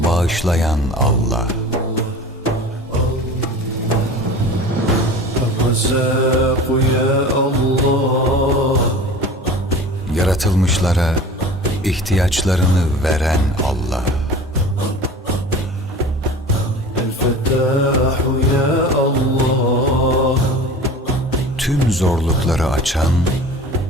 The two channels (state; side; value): normal; both; correlation 0.39